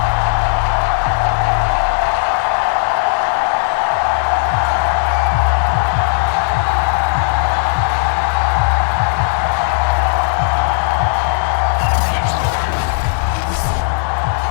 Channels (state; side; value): silent; right; digital silence